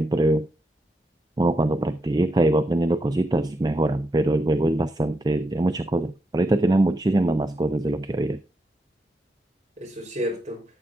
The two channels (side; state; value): both; normal; correlation 0.82